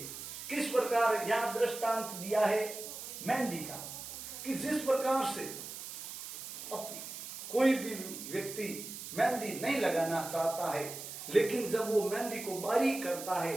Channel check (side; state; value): right; noise; hiss, 9 dB below the sound